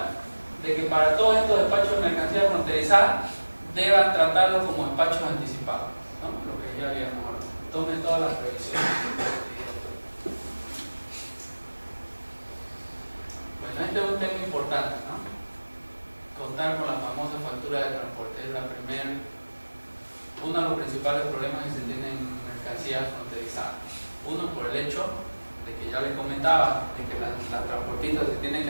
de que para todos estos despachos de mercancía fronterizada deban tratarlo como despachos anticipados, ¿no? Lo que ya habíamos hablado. Tome todas las previsiones. Bueno, este es un tema importante, ¿no? Contar con la famosa factura de transporte es uno de los principales problemas que se tienen en mercancías fronterizadas. Uno, por el hecho de que ya les comentaba, de que las transportistas se tienen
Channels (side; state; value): both; inverted; correlation -1.00